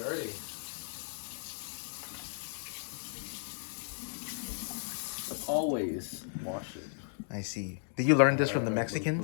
Always wash it. I see. Did you learn this from the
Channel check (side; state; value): right; silent; digital silence